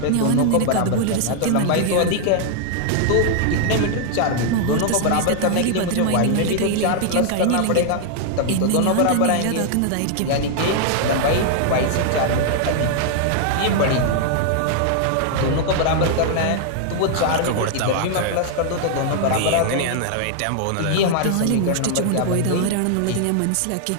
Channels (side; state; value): both; different; correlation 0.00